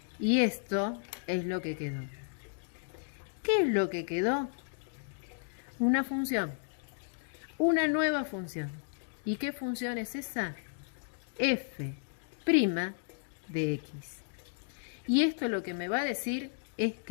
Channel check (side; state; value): right; silent; digital silence